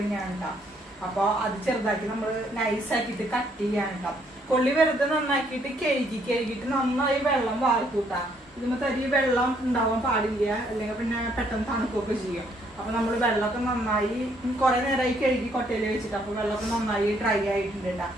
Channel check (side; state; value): both; normal; correlation 0.68